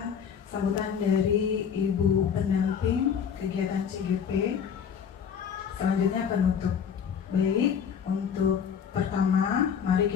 sambutan dari ibu pendamping kegiatan CGP, selanjutnya penutup. Baik, untuk pertama, mari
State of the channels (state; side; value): quieter; right; 7.4 dB